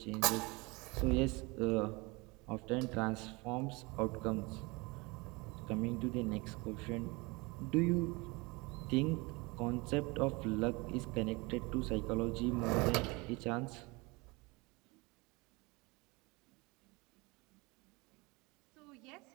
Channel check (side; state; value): left; quieter; 25.8 dB